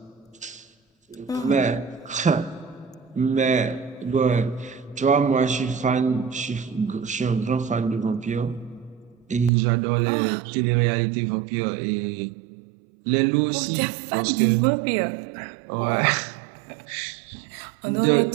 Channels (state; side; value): drops out; left; at 9.5 s